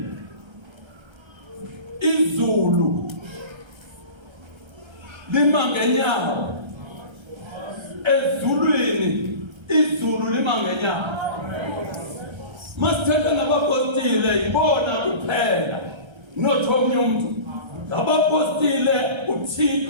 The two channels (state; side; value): late; left; 1.3 ms